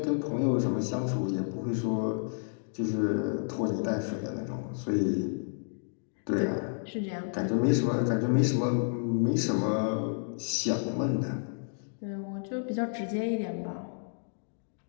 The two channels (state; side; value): silent; right; digital silence